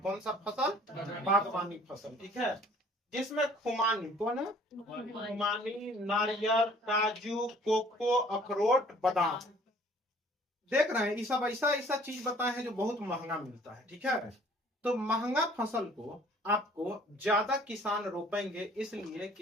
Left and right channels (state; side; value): normal; both; correlation 0.55